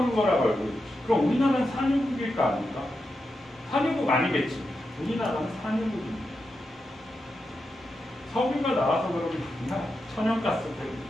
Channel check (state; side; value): normal; both; correlation 0.88